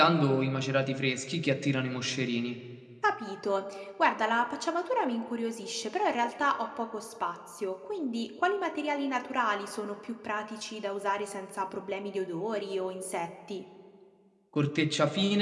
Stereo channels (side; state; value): both; identical; correlation 1.00